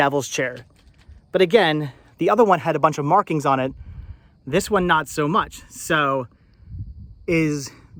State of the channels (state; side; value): identical; both; correlation 1.00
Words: chair. But again, the other one had a bunch of markings on it. This one, not so much. So is